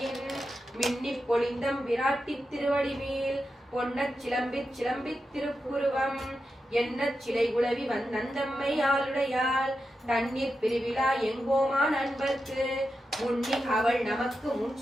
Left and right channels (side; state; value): both; normal; correlation 0.89